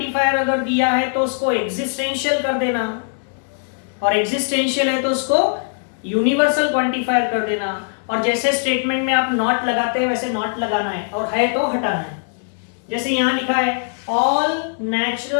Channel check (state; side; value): silent; right; 66 dB below the other